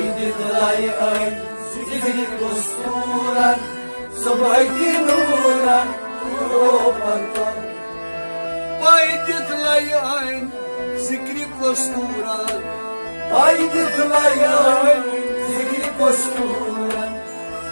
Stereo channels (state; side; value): inverted; both; correlation -1.00